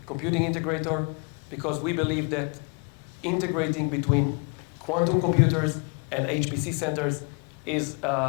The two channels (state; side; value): quieter; right; 35.3 dB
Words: computing integrator, because we believe that integrating between quantum computers and HPC centers is